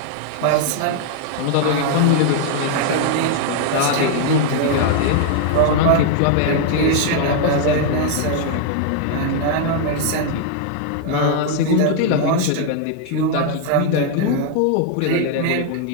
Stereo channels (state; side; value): different; both; correlation 0.00